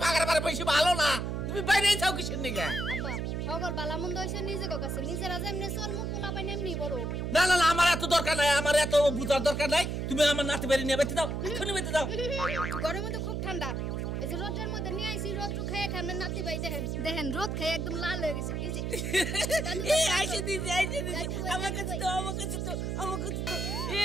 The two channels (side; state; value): right; noise; hum, 2 dB below the sound